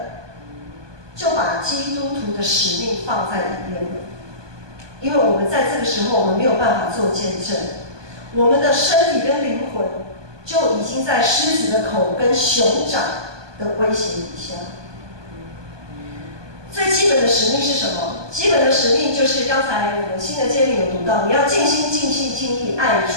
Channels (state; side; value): late; left; 1.2 ms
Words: 就把基督徒的使命放在一边了。因为我们在这个时候，我们没有办法做见证，我们的身体跟灵魂就已经在狮子的口跟熊掌的威胁底下。最基本的使命是什么？基本的使命就是刚才我们新的诫命有读到，你要尽心、尽性、尽力爱主